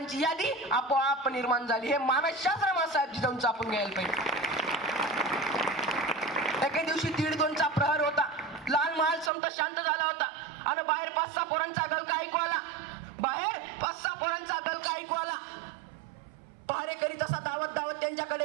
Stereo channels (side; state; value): left; drops out; at 9.3 s